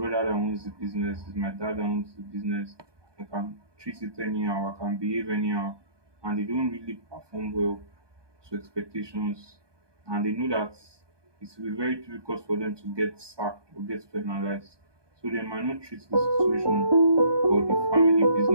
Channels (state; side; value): late; left; 1.2 ms